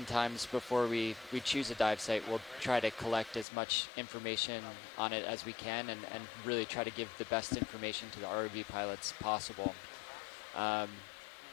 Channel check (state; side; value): drops out; right; at 3.5 s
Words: before we choose a dive site, we'll try to collect as much information on it as we can and really try to give the best information to the ROV pilots possible.